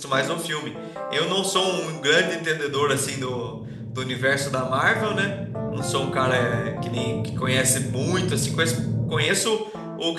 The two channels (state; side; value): identical; both; correlation 1.00